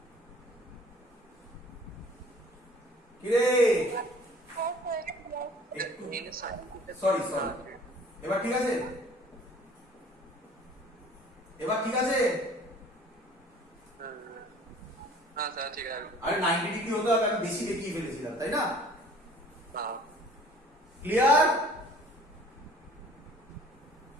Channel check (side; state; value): both; normal; correlation 0.50